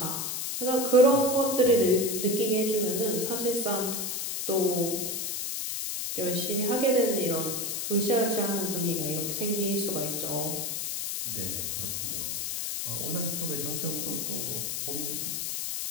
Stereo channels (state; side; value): noise; left; hiss, 2 dB below the sound